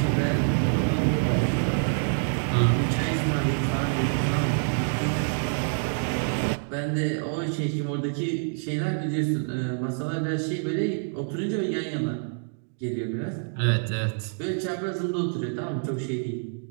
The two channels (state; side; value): silent; left; digital silence